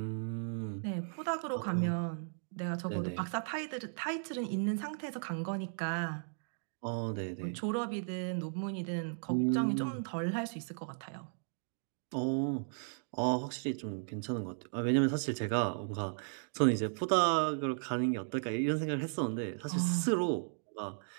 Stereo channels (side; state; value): left; silent; digital silence